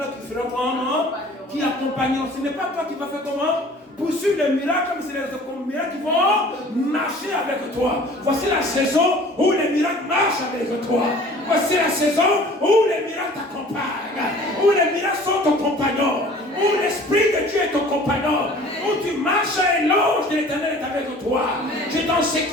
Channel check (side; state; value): both; normal; correlation 0.48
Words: qui feront comment? Qui accompagneront. Ce n'est pas toi qui vas faire comment? Poursuivre les miracles, comme c'est les miracles qui vont marcher avec toi. Voici la saison où les miracles marchent avec toi. Voici la saison où les miracles t'accompagnent, où les miracles sont ton compagnon, où l'Esprit de Dieu est ton compagnon, où tu marches et l'ange de l'Éternel est avec toi. Tu es en